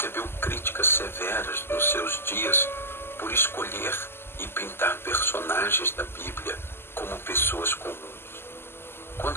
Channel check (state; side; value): late; right; 0.12 ms